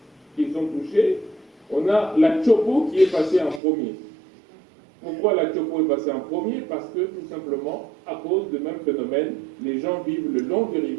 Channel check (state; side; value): drops out; left; at 3.6 s